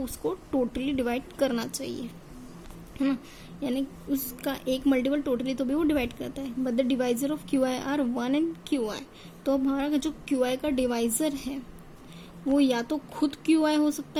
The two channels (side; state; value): both; identical; correlation 1.00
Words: उसको टोटली डिवाइड करना चाहिए, है ना। यानी उसका एक मल्टीपल टोटली तो भी वो डिवाइड करता है। But the divisor of QI are 1 and QI, तो हमारा जो QI का डिवाइजर है वो या तो खुद QI हो